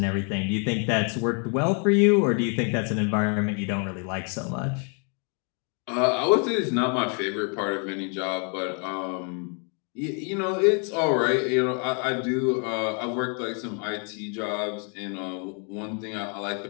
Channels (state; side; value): quieter; right; 39.5 dB